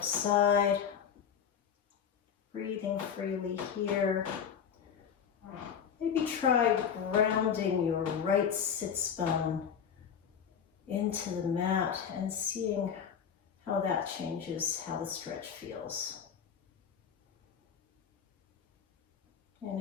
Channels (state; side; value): quieter; right; 7.7 dB